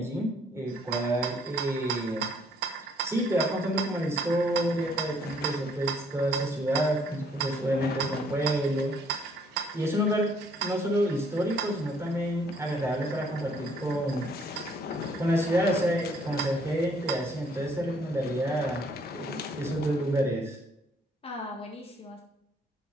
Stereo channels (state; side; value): normal; both; correlation 0.64